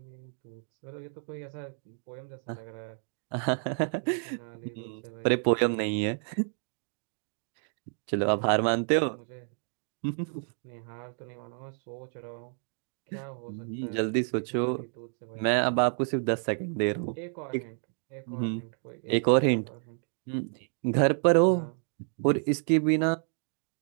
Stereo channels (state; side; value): silent; left; 57 dB below the other